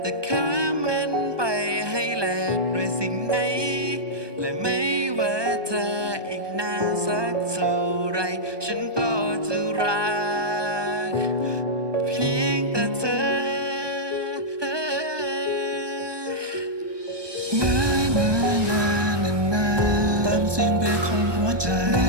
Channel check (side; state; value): left; late; 1.2 ms